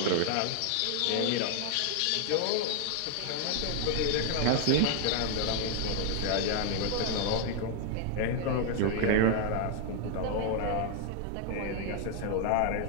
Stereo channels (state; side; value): different; both; correlation 0.00